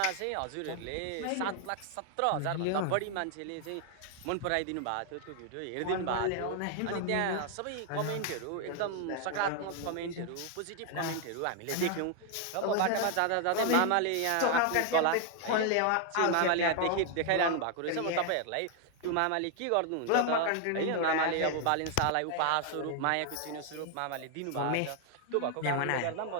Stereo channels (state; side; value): different; both; correlation 0.00